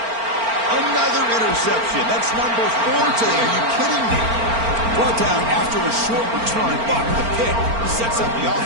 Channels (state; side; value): late; left; 4.4 ms